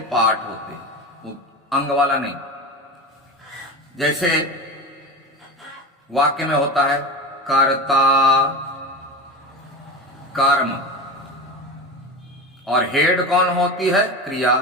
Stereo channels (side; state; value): both; normal; correlation 0.26